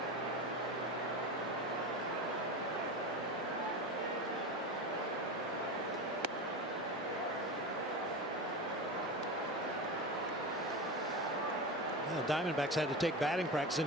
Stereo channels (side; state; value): both; normal; correlation 0.24